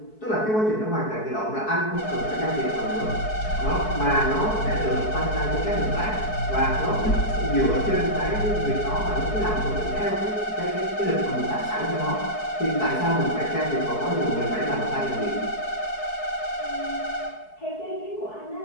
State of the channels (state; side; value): late; right; 4.6 ms